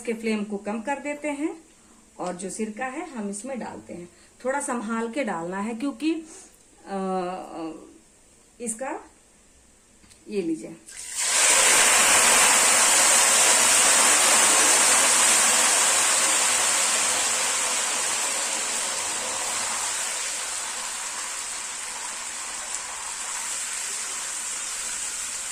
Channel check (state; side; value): identical; both; correlation 1.00